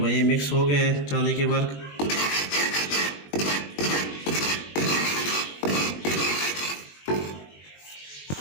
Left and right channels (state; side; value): late; right; 21 ms